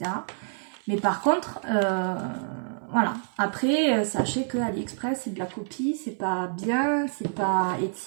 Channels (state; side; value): silent; left; 56 dB below the other